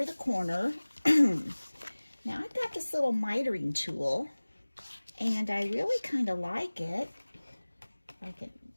the corner. Now I've got this little mitering tool and I really kind of like it. I can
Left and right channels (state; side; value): inverted; both; correlation -1.00